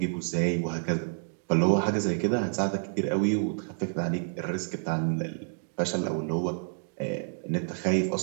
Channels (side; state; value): left; silent; digital silence